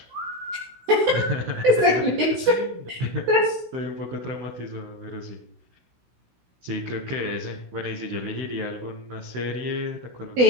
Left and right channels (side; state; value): left; late; 16 ms